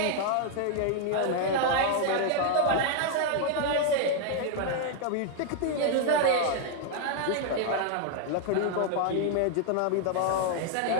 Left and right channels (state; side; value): different; both; correlation 0.00